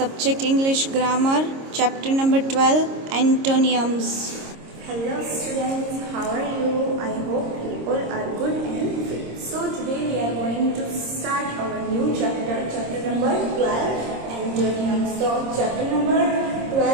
English Grammar, Chapter number 12, Antonyms. Hello students, how are you? I hope you all are good and fit. So today we are going to start our new chapter, chapter number 12, Antonyms. So chapter number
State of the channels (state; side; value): late; left; 26 ms